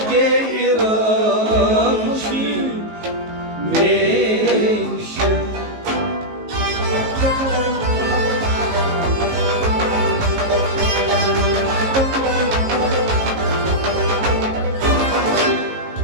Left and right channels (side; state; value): left; late; 19 ms